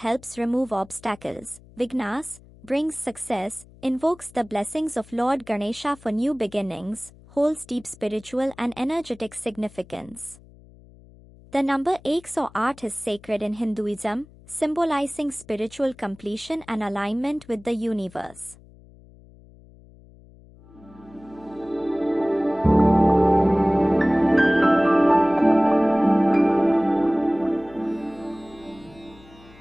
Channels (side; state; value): left; noise; hum, 24 dB below the sound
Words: remove obstacles, vignas, brings success, invokes the blessings of Lord Ganesha for new beginnings, holds deep spiritual and energetic significance. The number 108 is sacred in Hinduism, symbolizing spiritual completion and alignment with the universe.